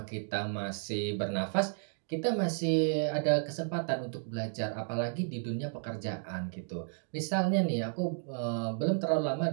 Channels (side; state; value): left; silent; digital silence